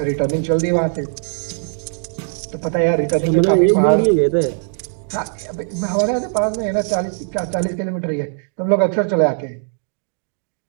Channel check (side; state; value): left; silent; digital silence